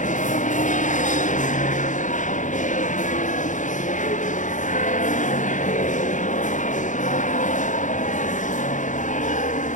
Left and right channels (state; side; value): late; right; 0.36 ms